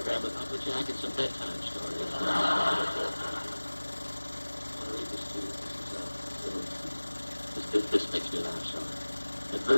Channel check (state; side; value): inverted; both; correlation -1.00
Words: with Uncle Jack and some bedtime stories. I'll read this to you. This makes me laugh, so.